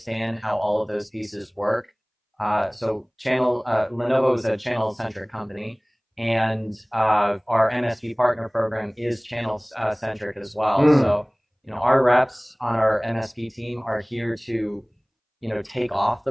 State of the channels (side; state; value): both; identical; correlation 1.00